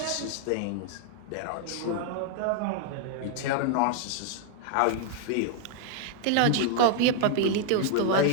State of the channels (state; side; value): different; both; correlation 0.00